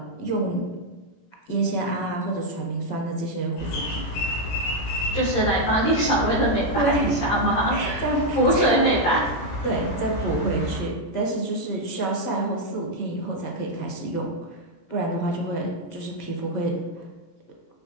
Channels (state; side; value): late; right; 17 ms